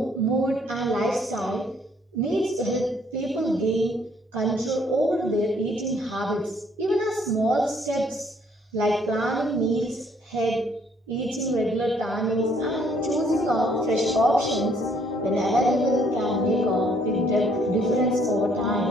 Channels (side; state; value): both; normal; correlation 0.65